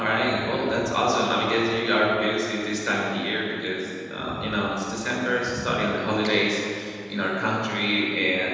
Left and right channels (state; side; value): identical; both; correlation 1.00